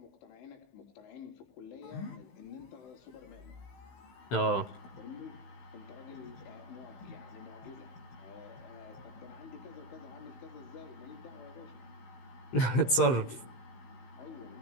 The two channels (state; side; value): late; right; 16 ms